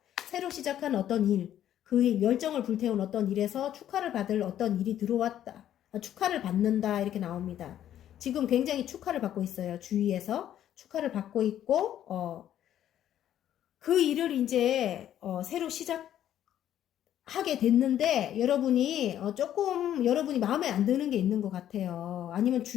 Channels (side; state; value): right; quieter; 11.2 dB